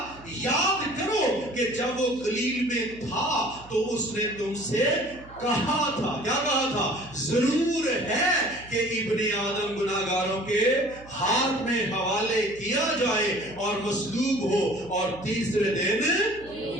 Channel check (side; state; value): right; noise; hum, 21 dB below the sound